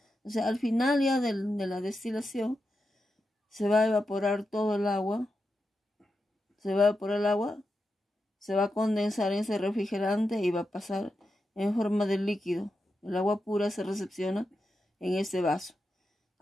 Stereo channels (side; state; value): both; normal; correlation 0.88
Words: O sea, al final ya de la destilación se va a evaporar todo el agua, se va a condensar en ese refrigerante y va a pasar en forma de líquido. El agua pura se recepciona en este vaso.